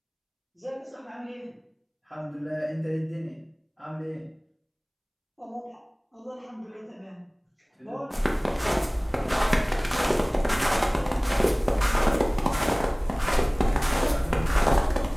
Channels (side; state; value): both; identical; correlation 1.00